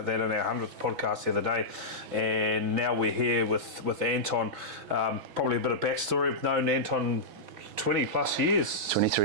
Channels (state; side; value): late; left; 6.1 ms